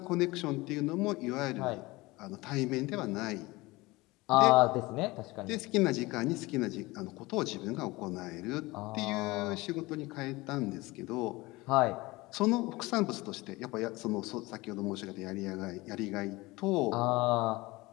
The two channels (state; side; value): quieter; right; 21.7 dB